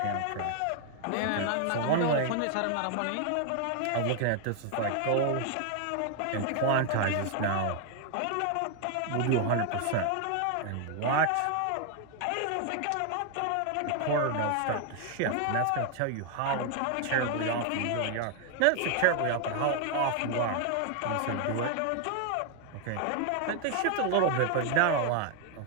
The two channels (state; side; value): different; both; correlation 0.00